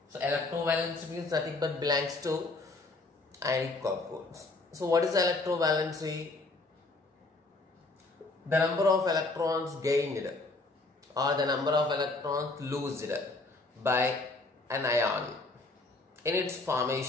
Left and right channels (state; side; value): quieter; right; 3.3 dB